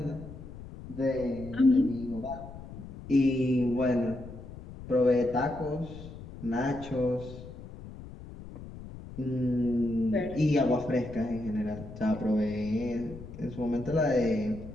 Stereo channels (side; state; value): left; noise; rumble, 13 dB below the sound